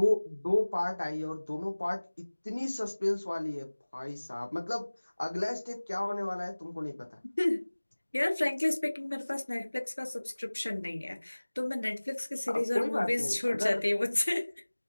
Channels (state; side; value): inverted; both; correlation -1.00